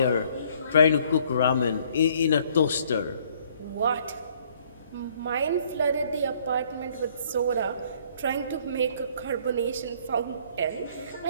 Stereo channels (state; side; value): inverted; both; correlation -0.61